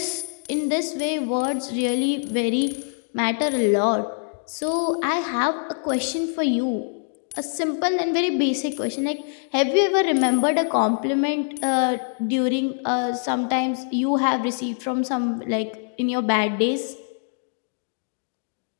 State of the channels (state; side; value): silent; right; digital silence